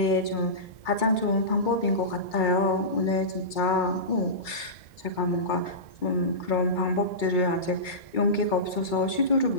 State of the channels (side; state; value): right; late; 2.3 ms